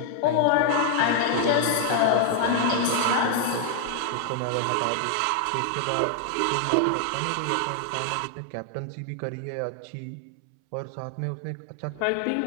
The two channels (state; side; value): different; both; correlation 0.00